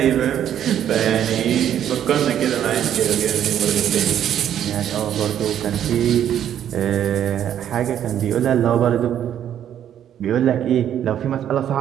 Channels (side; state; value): left; quieter; 10.2 dB